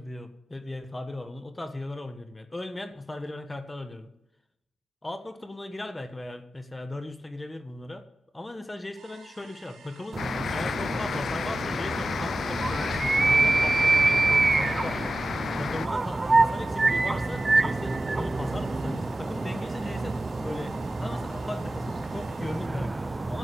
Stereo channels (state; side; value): normal; both; correlation 0.94